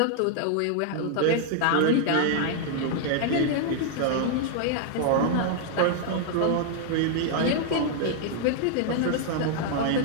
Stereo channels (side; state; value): both; different; correlation 0.00